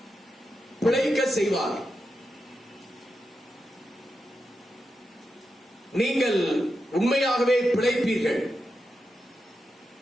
பிழைக்க செய்வார். நீங்கள் உண்மையாகவே பிழைப்பீர்கள்.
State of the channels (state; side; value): normal; both; correlation 0.88